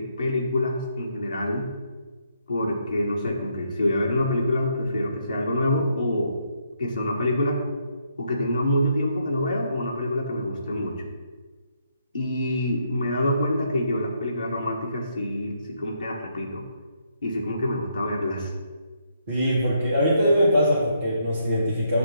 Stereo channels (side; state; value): both; inverted; correlation -0.75